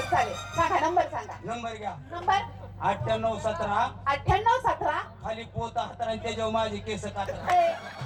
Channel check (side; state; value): both; identical; correlation 1.00